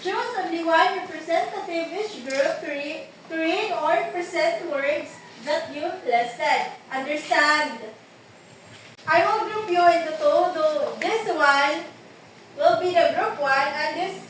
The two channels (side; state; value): both; identical; correlation 1.00